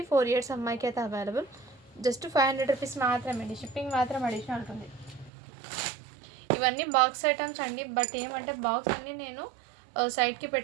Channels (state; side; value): drops out; left; at 5.3 s